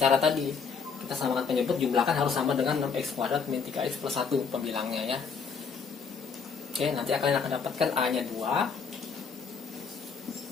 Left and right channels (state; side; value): quieter; right; 5.7 dB